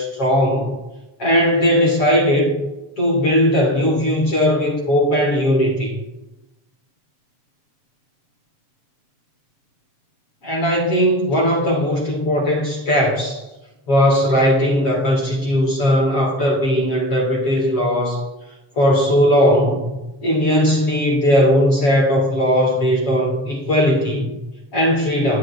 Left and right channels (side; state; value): right; late; 7.2 ms